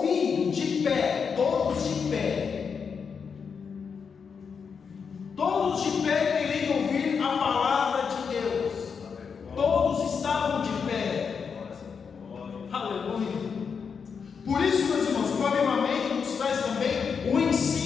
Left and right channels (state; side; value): quieter; right; 6.1 dB